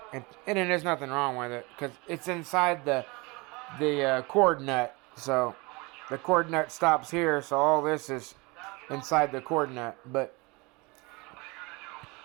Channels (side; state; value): left; quieter; 26.2 dB